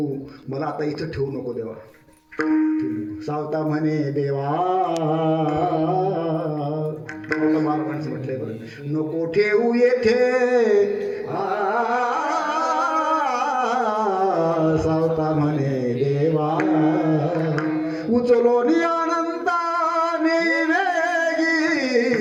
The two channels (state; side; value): identical; both; correlation 1.00